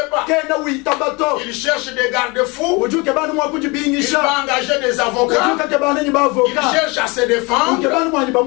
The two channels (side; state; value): right; quieter; 26.9 dB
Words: pas. Il cherche des garde-fous. Il va engager des avocats. Il cherche à se défendre.